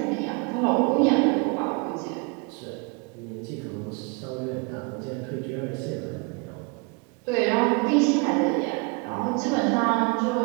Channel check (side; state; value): left; quieter; 31.4 dB